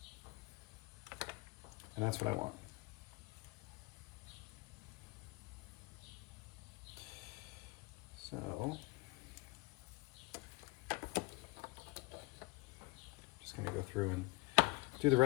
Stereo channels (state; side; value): quieter; right; 22.2 dB